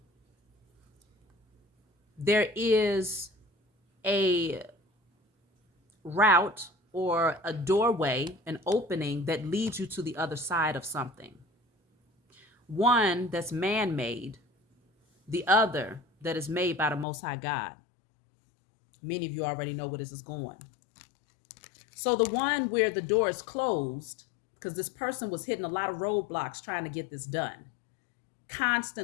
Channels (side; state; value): right; drops out; at 17.1 s